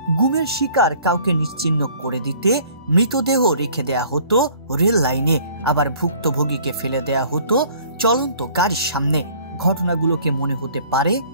গুমের শিকার কাউকে নিশ্চিহ্ন করে দিতে মৃতদেহ রেখে দেয়া হতো রেল লাইনে, আবার ভুক্তভোগীকে ফেলে দেয়া হতো চলন্ত গাড়ির সামনে। ঘটনাগুলোকে মনে হতে পারে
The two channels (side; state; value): both; inverted; correlation -0.54